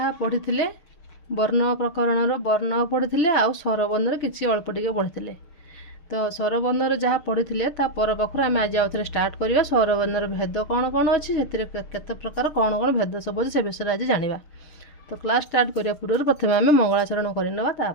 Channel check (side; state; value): right; late; 6.6 ms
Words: पढ़ी वर्ण प्रकरण वर्ण पढ़ी आउ स्वरबर्णर किसी अल्प टे पढ़ी तो स्वरबर्णर जहाँ पढ़ी पर पाखर आम आज आउ थे स्टार्ट करवा स्वरबर्णर भेद कौन कौन अच्छी केते प्रकार कौन कौन भेद सब अच्छे से विषय आज जाना। तो क्लास स्टार्ट करने पूर्व प्रथम आम मंगलाचरण करवा